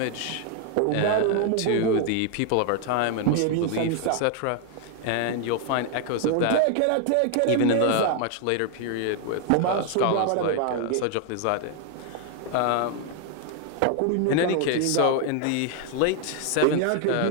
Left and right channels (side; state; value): both; different; correlation 0.00